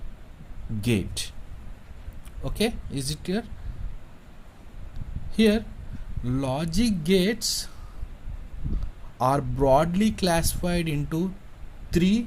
gate. Okay, is it clear? Here logic gates are broadly classified into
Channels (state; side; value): identical; both; correlation 1.00